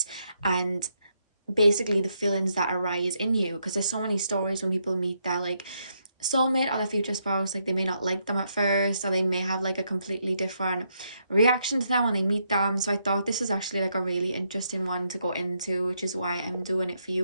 and basically the feelings that arise in you, because there's so many stories when people meet their soulmate or their future spouse, like they may not like them at first, or they may have like a completely different reaction to them when they meet them. So I thought this is actually like a really interesting one to go into, which is why I'm doing it for you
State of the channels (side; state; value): both; inverted; correlation -0.78